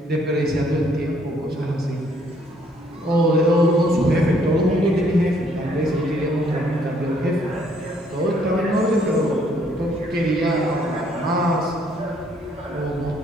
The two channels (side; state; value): both; normal; correlation 0.66